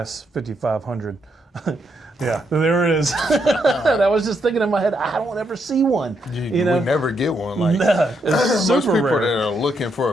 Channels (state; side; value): normal; both; correlation 0.78